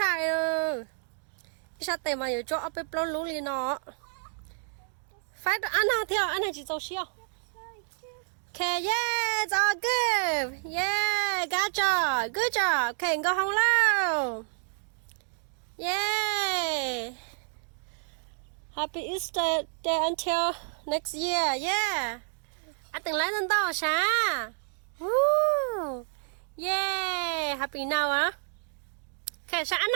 ơ. Sao tệ mà giờ cho ấp bếp lon lú liền nó. Phải ăn nào theo, ăn này chỉ dầu xiao. Okay, yeah, it's all good. Yeah, good job. Okay, go home now. Yay. Happy Easter day until next year. Yeah. Anh từng lấy lên to sao? Woo. Yeah. Happy now, huh? Okay, sao anh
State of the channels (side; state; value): left; silent; digital silence